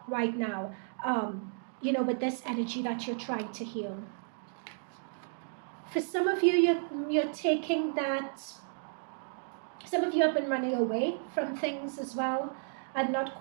right now, with this energy that you're trying to heal. For some of you, you're taking that... Some of you have been running away from things as well and not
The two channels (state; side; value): silent; left; digital silence